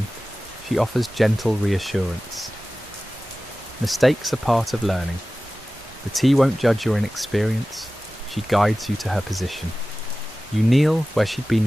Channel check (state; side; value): normal; both; correlation 0.96